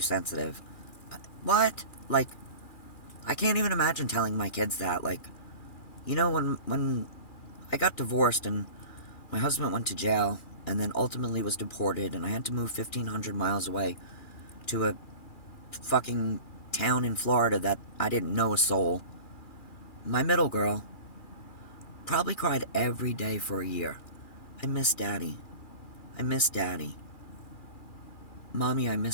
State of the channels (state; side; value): late; right; 2.4 ms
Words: What? Like, I can't even imagine telling my kids that. Like, you know, when I got divorced and my husband went to jail and then ultimately was deported and I had to move 1,500 miles away to a fucking town in Florida that I didn't know a soul, my middle girl probably cried every day for a year. I miss Daddy. I miss Daddy. Mommy, I